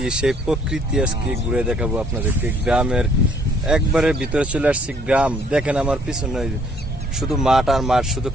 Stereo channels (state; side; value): normal; both; correlation 0.63